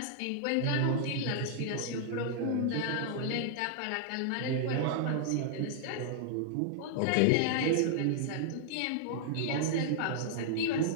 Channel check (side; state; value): both; different; correlation -0.01